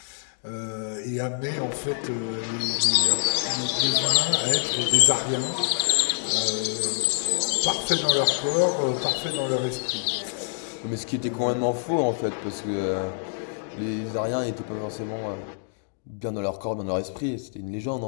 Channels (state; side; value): silent; right; digital silence